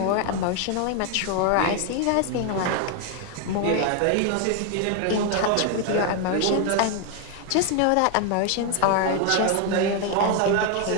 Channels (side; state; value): both; different; correlation 0.01